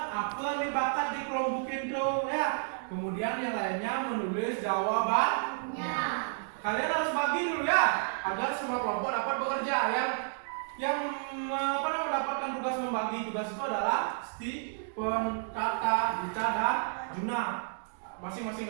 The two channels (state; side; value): silent; left; digital silence